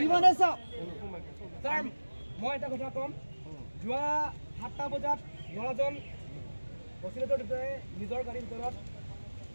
মই এটা কথা ক'ম যোৱা 7টা বজাত ল'ৰাজন অচিলেটৰ ভিতৰে নিজৰ গাড়ীৰ ভিতৰত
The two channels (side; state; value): both; inverted; correlation -1.00